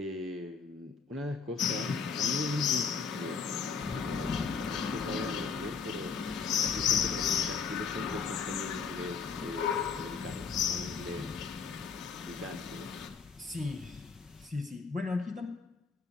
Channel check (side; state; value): right; quieter; 5.6 dB